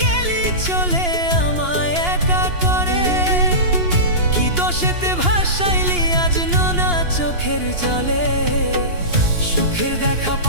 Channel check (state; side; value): late; left; 2.8 ms